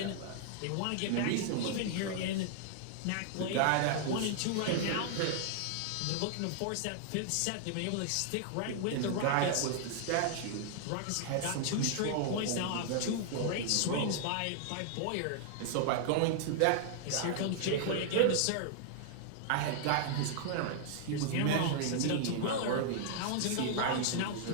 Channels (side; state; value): both; different; correlation -0.01